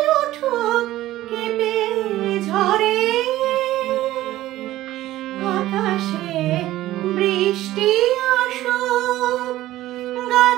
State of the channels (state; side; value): quieter; left; 15.2 dB